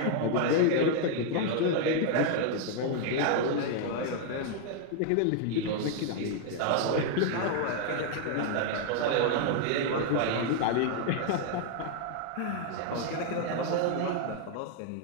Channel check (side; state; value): both; different; correlation 0.00